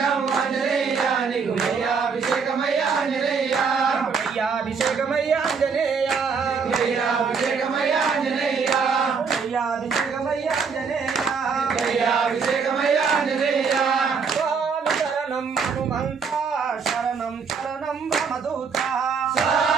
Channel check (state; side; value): quieter; left; 5.6 dB